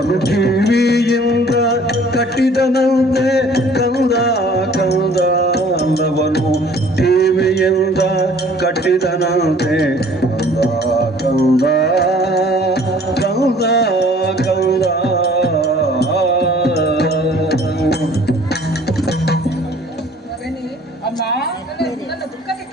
ಕಿವಿಯಿಂದ ಕಟ್ಟಿದನಂತೆ ಕಂದ ಕಂದ ಲವನು ಕಿವಿಯಿಂದ ಕಟ್ಟಿದನಂತೆ ಕಂದ ಕಂದ ಕಂದ ಮಗನೇ, ಅಮ್ಮ ನನ್ನ ದುಃಖಕ್ಕೆ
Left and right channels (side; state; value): both; normal; correlation 0.53